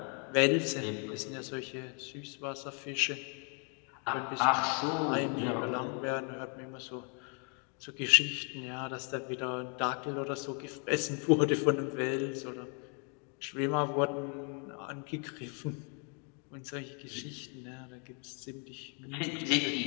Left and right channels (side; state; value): right; quieter; 38.5 dB